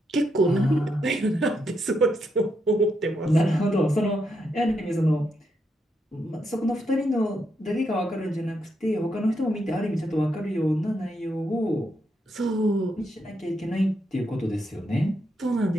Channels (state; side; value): normal; both; correlation 0.81